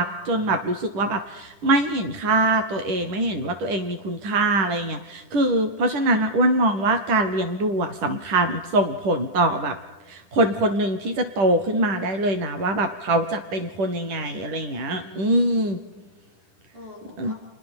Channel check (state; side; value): late; left; 10 ms